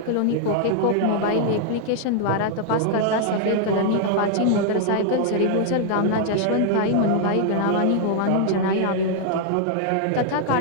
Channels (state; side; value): different; both; correlation 0.00